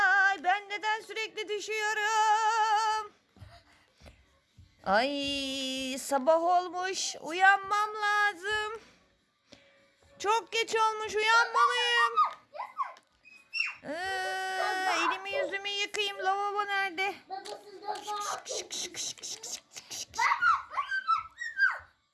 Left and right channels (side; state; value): both; identical; correlation 1.00